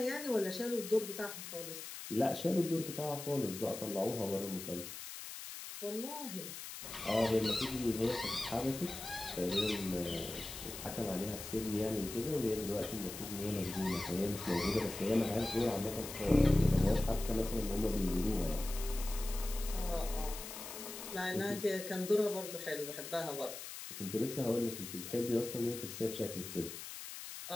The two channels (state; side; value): noise; left; hiss, 9 dB below the sound